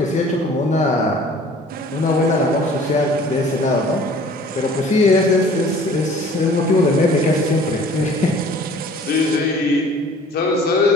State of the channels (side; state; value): both; normal; correlation 0.50